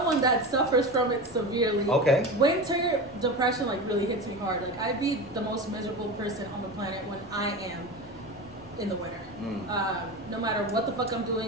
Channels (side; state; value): both; normal; correlation 0.26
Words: that suffers from it severely, winter depression like really hits me hard. Like I'd be the most miserable person on the planet when I am in the winter. No matter what the fuck I'm